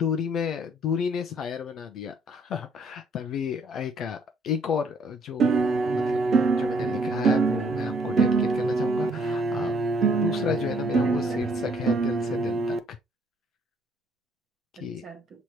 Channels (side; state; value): both; normal; correlation 0.63